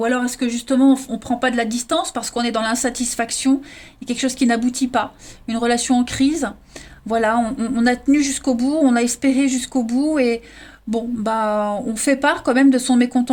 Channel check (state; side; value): identical; both; correlation 1.00